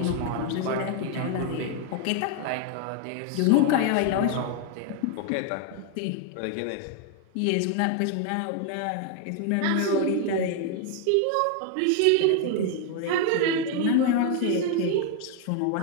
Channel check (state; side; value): different; both; correlation 0.00